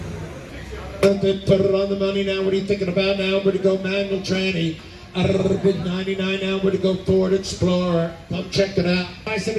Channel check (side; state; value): both; identical; correlation 1.00